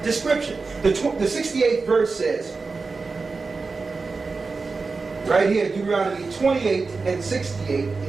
description. The 68th verse says, right here, Deuteronomy 28 and 68,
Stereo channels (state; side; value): quieter; left; 4.2 dB